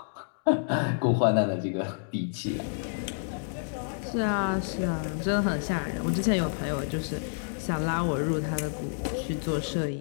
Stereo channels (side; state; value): right; silent; digital silence